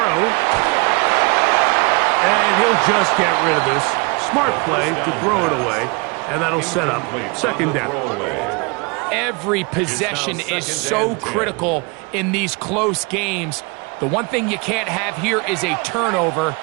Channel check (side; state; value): left; quieter; 29.6 dB